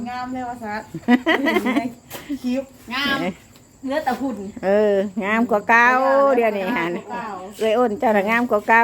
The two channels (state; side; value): identical; both; correlation 1.00